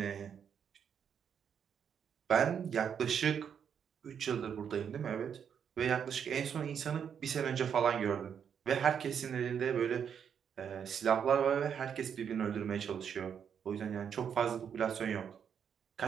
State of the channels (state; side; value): quieter; left; 7.8 dB